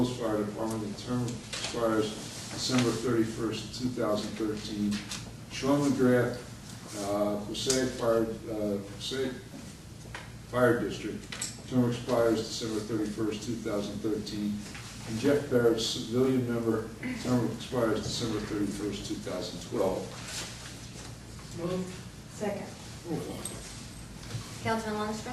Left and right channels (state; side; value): identical; both; correlation 1.00